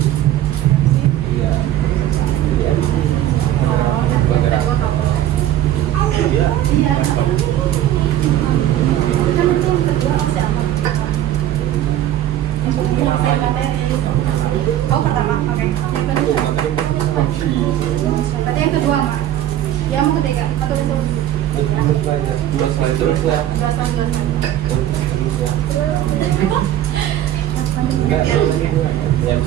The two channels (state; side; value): quieter; left; 12.3 dB